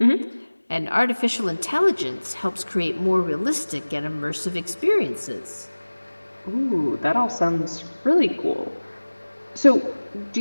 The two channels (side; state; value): both; inverted; correlation -1.00